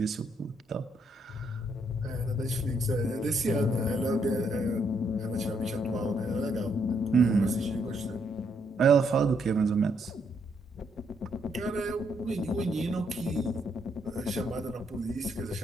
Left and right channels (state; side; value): normal; both; correlation 0.74